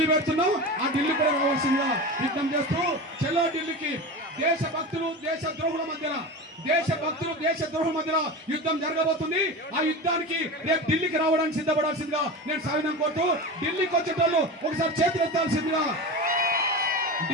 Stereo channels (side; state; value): both; normal; correlation 0.27